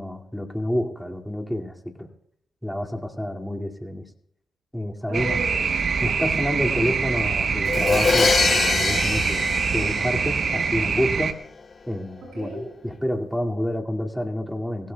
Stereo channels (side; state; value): both; normal; correlation 0.88